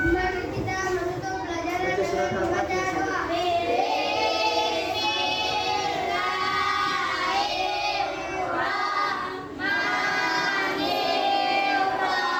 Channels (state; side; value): identical; both; correlation 1.00